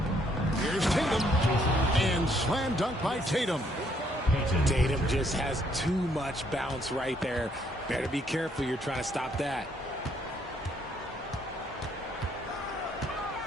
Here's Tatum. And slam dunk by Tatum. Tatum just has too much bounce right there. Better be careful. You're trying to stop that.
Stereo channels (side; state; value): both; normal; correlation 0.69